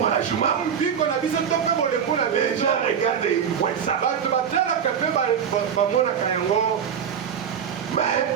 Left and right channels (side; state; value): left; quieter; 7.8 dB